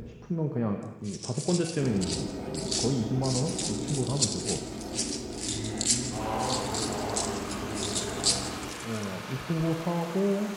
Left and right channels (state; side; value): identical; both; correlation 1.00